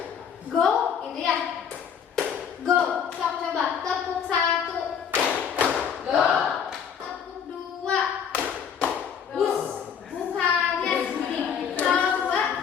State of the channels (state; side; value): quieter; right; 7.6 dB